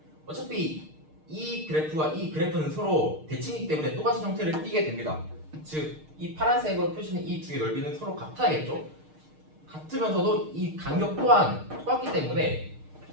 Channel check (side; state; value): left; late; 6.5 ms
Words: 어차피 이 그래프와 이 그래프는 서로 대칭이기 때문에 똑같은 형태를 띠게 됩니다. 즉 이 파란색으로 표시는 이 두 개의 넓이는 서로 같아야겠죠? 같으면서도 이 간격 또한 똑같기 때문에